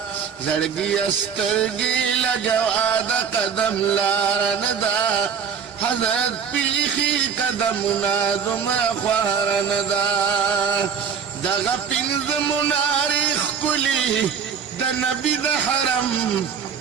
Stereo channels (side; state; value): left; quieter; 6.9 dB